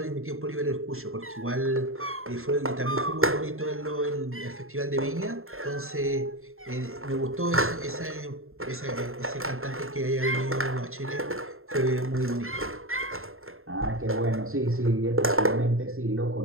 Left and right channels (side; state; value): left; late; 0.61 ms